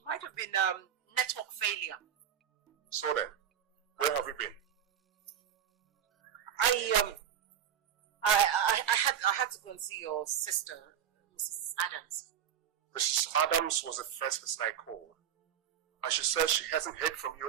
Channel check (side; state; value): left; quieter; 9.3 dB